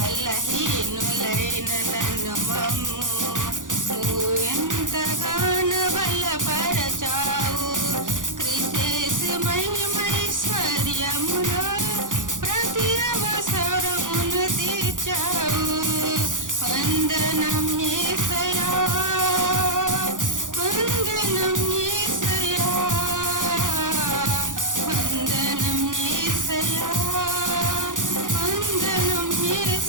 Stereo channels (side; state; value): left; late; 0.88 ms